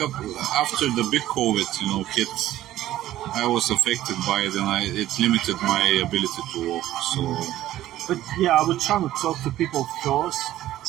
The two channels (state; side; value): quieter; left; 13.9 dB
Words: after the big COVID, hit, I was affected by it, and it limited my ability to walk. So, but yeah, I would try to talk to people first,